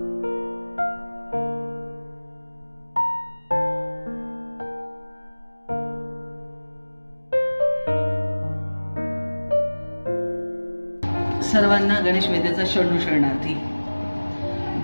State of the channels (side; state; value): both; inverted; correlation -1.00